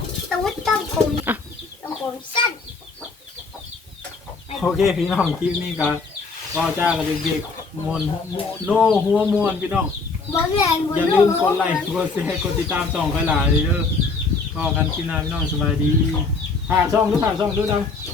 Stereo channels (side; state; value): right; quieter; 4.1 dB